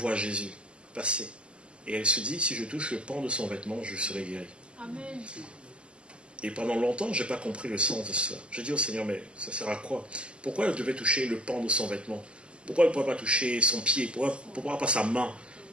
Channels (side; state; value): left; late; 0.052 ms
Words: Jésus passer. Et elle se dit, si je touche le pan de son vêtement, je serai guéri. Amen. Et pendant longtemps, je n'ai pas compris le sens de ça. J'ai dit au Seigneur, mais ça sert à quoi? Pourquoi elle devait toucher le pan de son vêtement? Pourquoi elle ne pourrait pas toucher son pied? Pourquoi pas sa main?